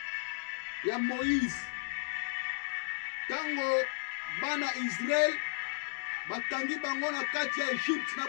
ya Moïse. Tango bana Israël batangi bango na kati ya Egypte na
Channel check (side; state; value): right; silent; digital silence